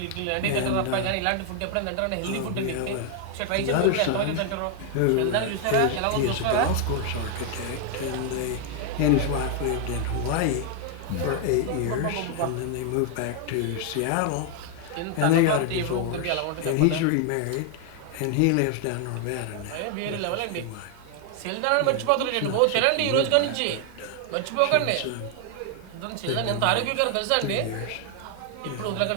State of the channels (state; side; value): different; both; correlation 0.00